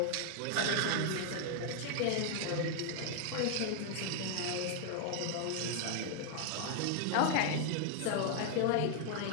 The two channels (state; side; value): different; both; correlation 0.00